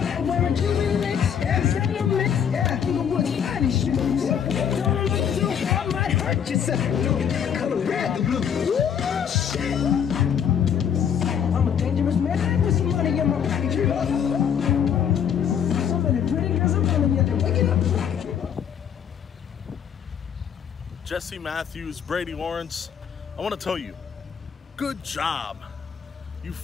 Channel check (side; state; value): right; quieter; 8.2 dB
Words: wearing Cuban links. Yeah, mix. Yeah, Inglewood's finest shoes. Don't look too hard, might hurt yourself. Color red, the blue. Ooh, shit. I'm a dangerous man with some money in my pocket. So many pretty girls I'm telling you, they're waking up. Jesse Matthews, Brady Lawrence, I want to tell you, good job. You